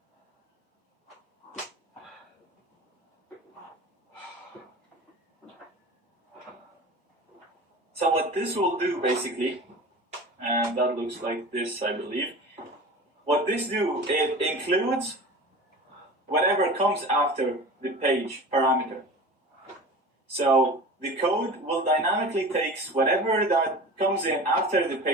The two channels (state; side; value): normal; both; correlation 0.35